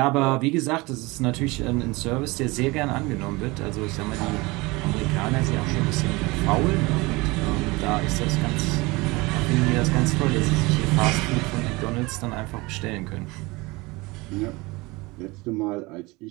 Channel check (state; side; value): quieter; left; 23.7 dB